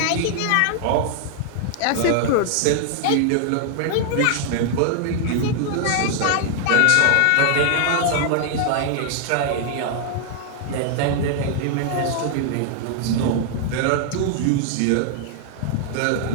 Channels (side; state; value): both; different; correlation 0.00